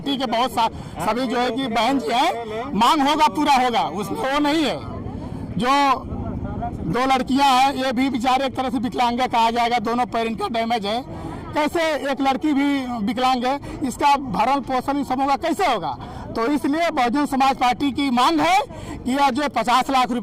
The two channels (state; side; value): identical; both; correlation 1.00